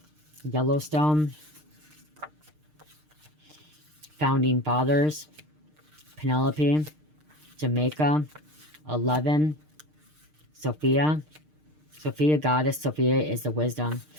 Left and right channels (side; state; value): left; late; 6.6 ms